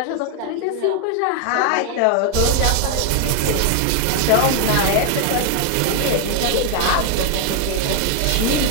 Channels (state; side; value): different; both; correlation 0.00